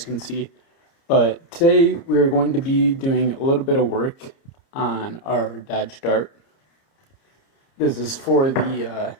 can see. But today we're going to be doing a little bit of work on our Dodge Dart. This is for the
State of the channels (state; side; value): late; right; 30 ms